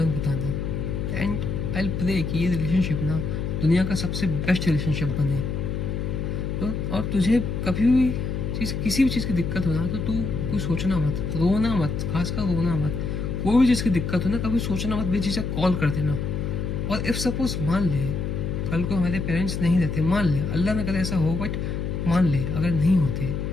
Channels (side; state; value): left; noise; hum, 2 dB below the sound